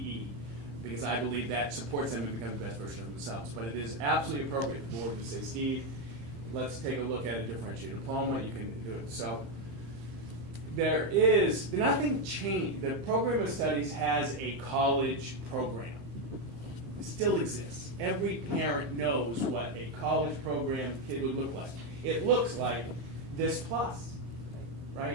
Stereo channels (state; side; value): late; left; 16 ms